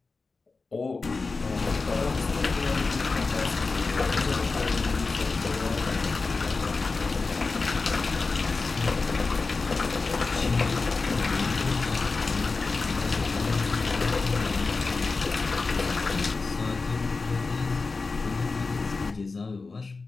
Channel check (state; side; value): quieter; right; 4.1 dB